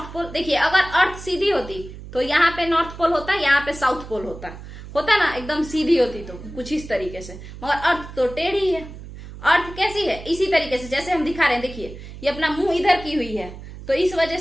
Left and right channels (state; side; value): noise; right; hum, 13 dB below the sound